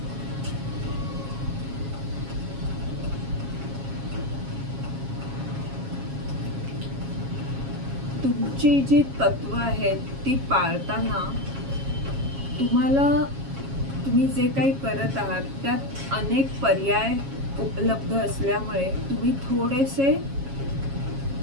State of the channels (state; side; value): late; left; 7.3 ms